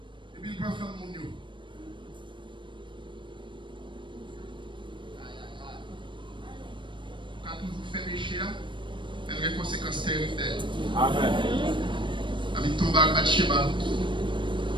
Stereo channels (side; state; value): left; late; 0.23 ms